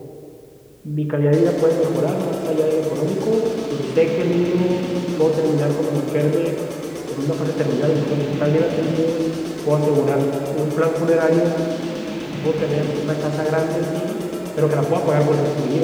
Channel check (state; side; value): identical; both; correlation 1.00